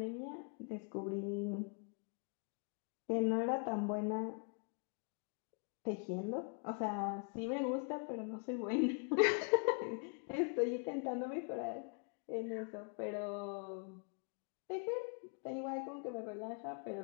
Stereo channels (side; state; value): right; quieter; 38.5 dB